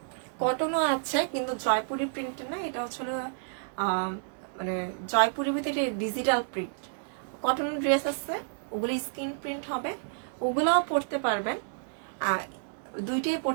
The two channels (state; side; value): silent; left; digital silence